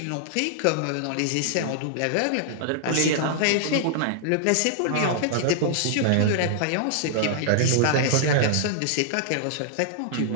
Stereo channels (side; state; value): both; different; correlation -0.01